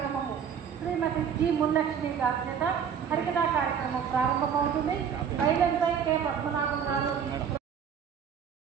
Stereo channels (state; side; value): quieter; left; 7.7 dB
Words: శ్రీమతి జి ముల్లక్ష్మి గారి చేత హరికథా కార్యక్రమం ప్రారంభమవుతుంది. బైలంపై కె పద్మనాభం గారు